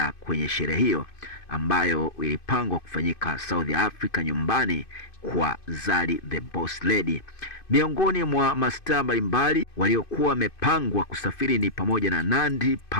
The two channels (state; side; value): late; right; 2.5 ms